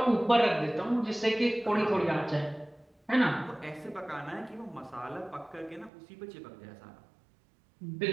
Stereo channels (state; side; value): drops out; left; at 5.9 s